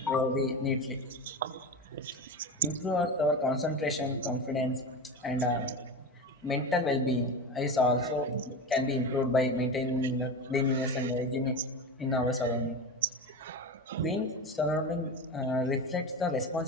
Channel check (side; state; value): both; normal; correlation 0.24